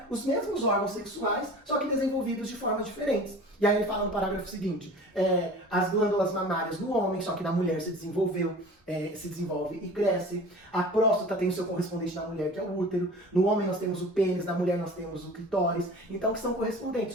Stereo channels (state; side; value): normal; both; correlation 0.41